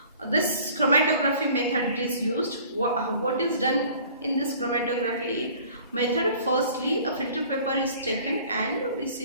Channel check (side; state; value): both; inverted; correlation -0.50